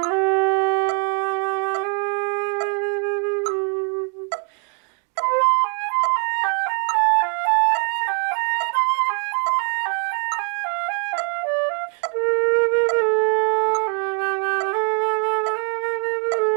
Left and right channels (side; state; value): left; quieter; 39.9 dB